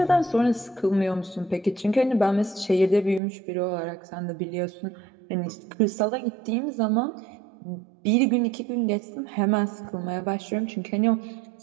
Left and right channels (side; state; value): left; drops out; at 3.2 s